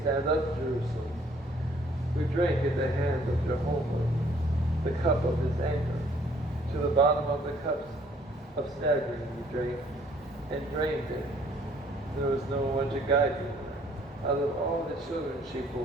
stand up, Jerusalem. We drank at the hand of Jehovah the cup of his anger. To the bottom of the cups of staggering we drank, and drained it. There was no one to guide me. Out of all the children she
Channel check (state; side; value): normal; both; correlation 0.62